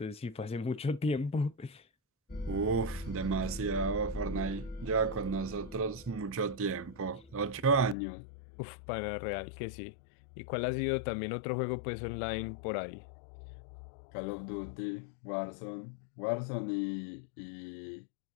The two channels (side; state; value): right; drops out; at 8.0 s